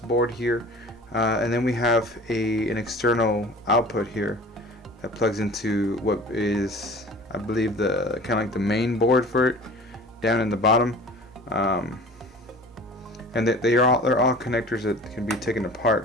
here, and then we have an external output here that plugs into what is, I believe, the kind of like the main board for it, down in the bottom, and they're all connectors that can be taken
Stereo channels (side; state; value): both; normal; correlation 0.42